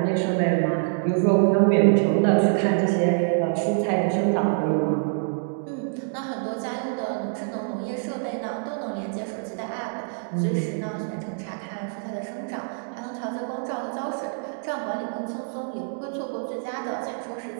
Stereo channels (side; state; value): left; silent; digital silence